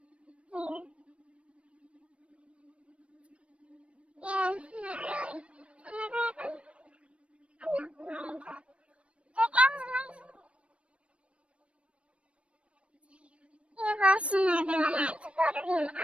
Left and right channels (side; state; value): left; late; 0.061 ms